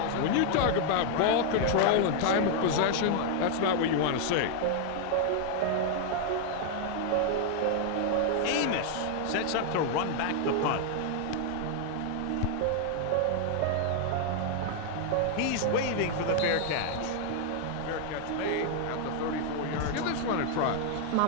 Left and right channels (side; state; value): both; different; correlation 0.00